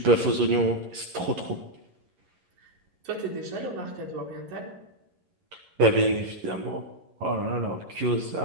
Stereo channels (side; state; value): left; late; 11 ms